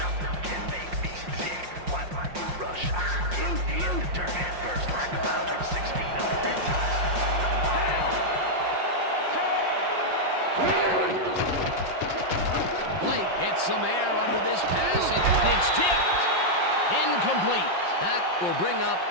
Gets some air under this pass, and it's tipped. Incomplete. That will bring up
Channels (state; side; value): late; left; 5.6 ms